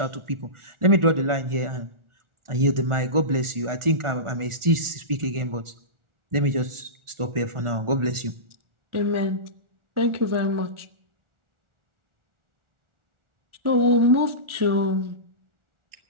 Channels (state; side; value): late; left; 1.4 ms